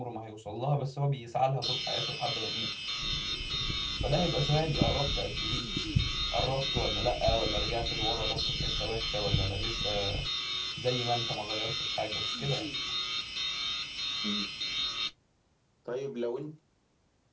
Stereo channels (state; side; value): identical; both; correlation 1.00